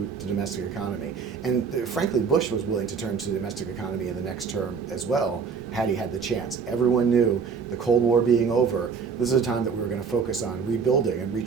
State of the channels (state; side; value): quieter; left; 5.8 dB